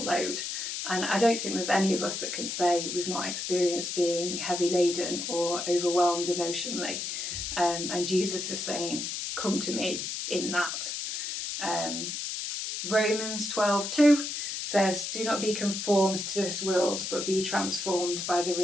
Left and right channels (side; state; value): left; noise; hiss, 4 dB below the sound